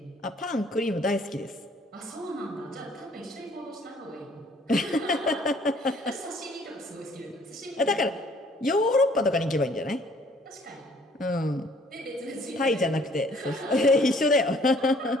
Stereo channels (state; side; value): normal; both; correlation 0.59